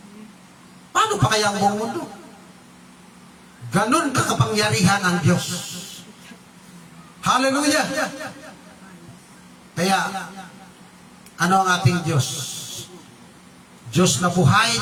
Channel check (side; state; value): both; identical; correlation 1.00